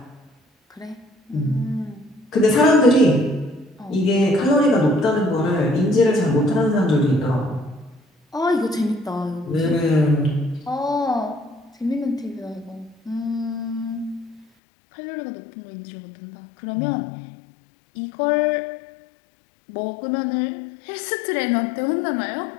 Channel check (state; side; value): drops out; right; at 14.5 s